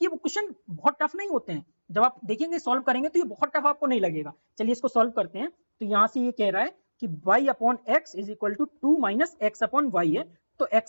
वो क्वेश्चन बहुत टफ नहीं होते हैं। जब आप देखेंगे सॉल्व करेंगे तो ये बहुत टफ आपको नहीं लगेगा। चलिए इसको सॉल्व करते हैं। तो यहां से ये कह रहा है कि y upon x is equal to 2 minus x upon y है, तो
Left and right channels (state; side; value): inverted; both; correlation -1.00